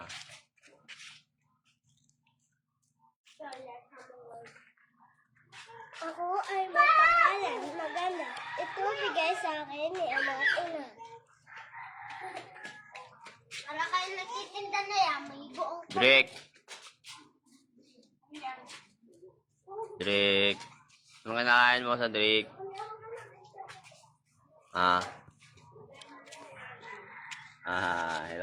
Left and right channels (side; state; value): both; identical; correlation 1.00